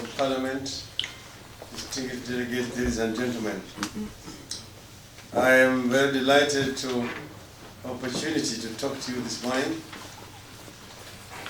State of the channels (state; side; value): identical; both; correlation 1.00